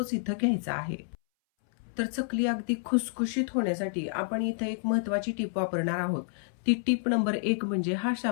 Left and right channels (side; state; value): right; silent; 58 dB below the other